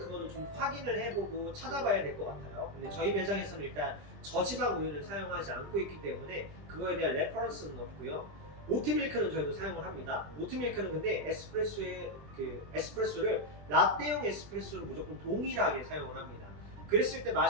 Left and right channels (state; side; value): late; left; 20 ms